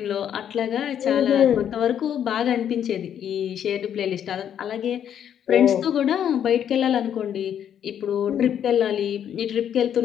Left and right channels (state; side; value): quieter; right; 9.3 dB